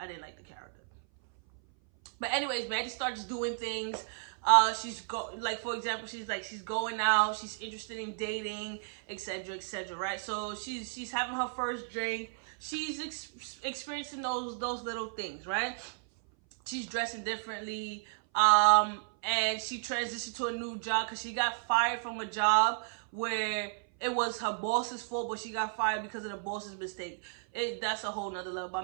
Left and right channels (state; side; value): silent; left; 56 dB below the other